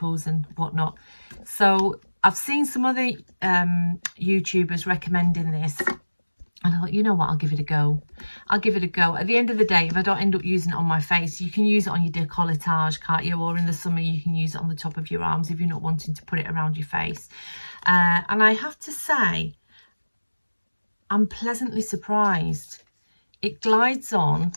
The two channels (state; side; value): inverted; both; correlation -1.00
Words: and whatnot. So I've seen some other YouTubers recommending this, and I thought, you know what, I'll give it a go. I'll give it a go. At the end of the day, if I don't end up using it on my face, you can use it on your décolletage, can't you? Or in the summer, you can use it on the top of your arms if you're not wanting to put it around your face. And I have to say, I'm pleasantly surprised. It glides on